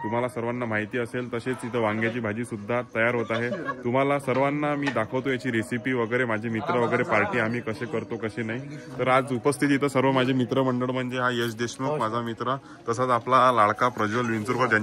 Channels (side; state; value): both; identical; correlation 1.00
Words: तुम्हाला सर्वांना माहिती असेल। तसेच इथं वांग्याची भाजी सुद्धा तयार होत आहे। तुम्हाला सर्वांना मी दाखवतो याची रेसिपी वगैरे, माझे मित्र वगैरे पार्टी आम्ही कसे करतो कसे नाही। तर आज उपस्थित इथं सर्व माझे मित्रमंडळ म्हणजे हा यश देशमुख माझा मित्र, तसाच आपला लाडका प्रज्वल विंचुरकर